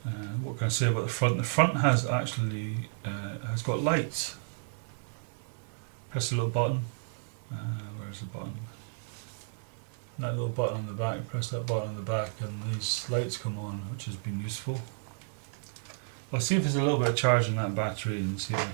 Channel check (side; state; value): left; silent; digital silence